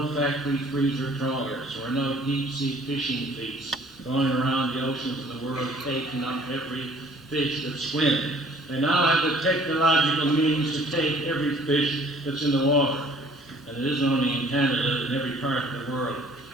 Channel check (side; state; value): both; normal; correlation 0.55